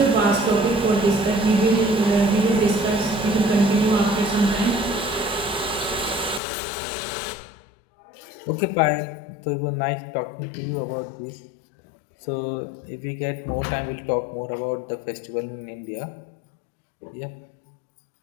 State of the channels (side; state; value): right; drops out; at 6.4 s